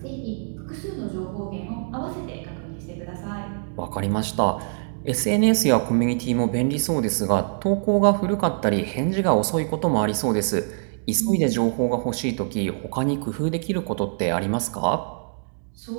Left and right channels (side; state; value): left; silent; digital silence